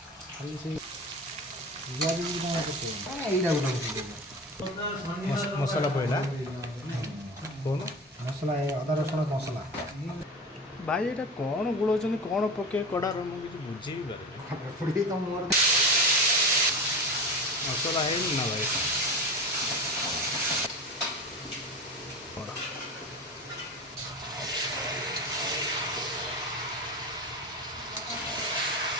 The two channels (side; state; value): both; normal; correlation 0.29